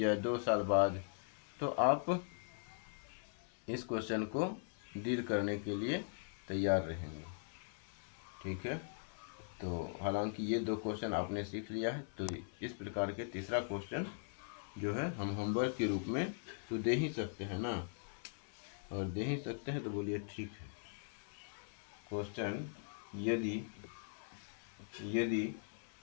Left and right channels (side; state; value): right; silent; 51 dB below the other